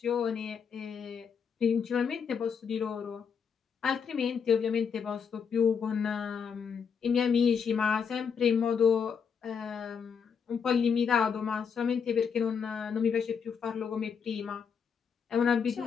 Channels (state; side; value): quieter; right; 6.6 dB